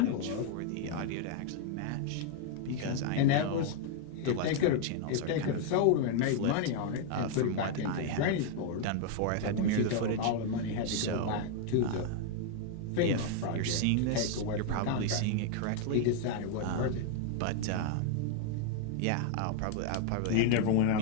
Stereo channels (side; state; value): both; different; correlation 0.00